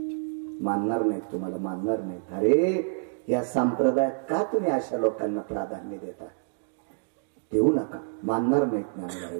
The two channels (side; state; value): left; silent; digital silence